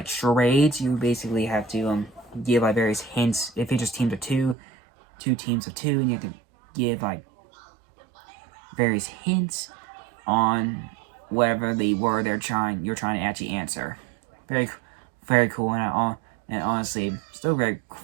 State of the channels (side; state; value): left; drops out; at 4.5 s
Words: charades. You basically have to give like various hints. It features teams of two teams of two, and you have to give like various hints on whatever the word you're trying to actually answer. Very, very cool, and honestly, still very